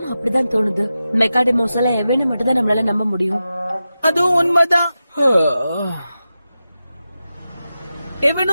அப்படிதான் தோணுது. மெக்காடெமோஸ் எல்லாம் எவனை மட்டும் தான் நம்மளால நம்ப முடியும். அதுவும் உண்மைதான்.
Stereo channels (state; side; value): inverted; both; correlation -0.92